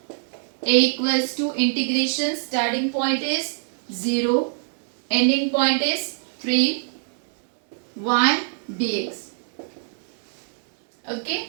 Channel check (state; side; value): silent; left; digital silence